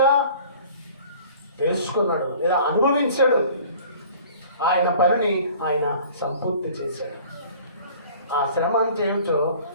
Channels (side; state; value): both; inverted; correlation -0.48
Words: తెలుసుకున్నాడు లేదా అనుభవించాడు. ఆయన పనిని ఆయన సంపూర్తి చేశాడు. ఆ శ్రమ అంటే ఏమిటో